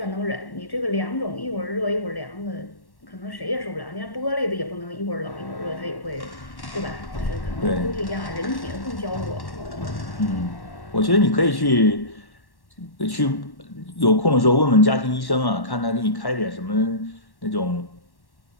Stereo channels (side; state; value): right; late; 1.1 ms